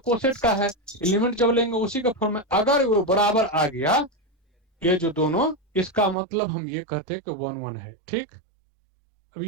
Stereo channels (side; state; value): left; drops out; at 6.2 s